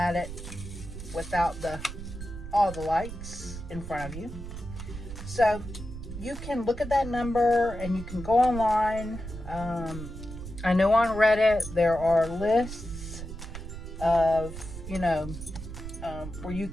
it without all the lights in front of you. So you can look at that number and you can go online. I know on Reddit there are lists of, you know, where you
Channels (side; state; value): right; noise; rumble, 10 dB below the sound